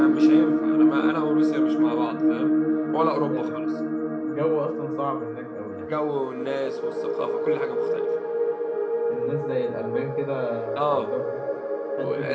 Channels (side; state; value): both; identical; correlation 1.00